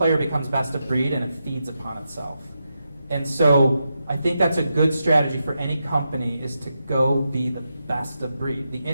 becomes best of breed and it feeds upon itself. And so I think that's a good strategy for any company, is to go be the best of breed. The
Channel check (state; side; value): inverted; both; correlation -0.86